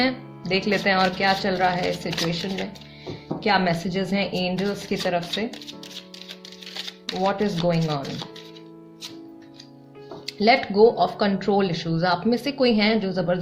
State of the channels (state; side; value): identical; both; correlation 1.00